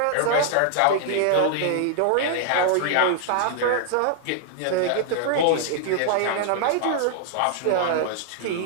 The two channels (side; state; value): both; different; correlation -0.01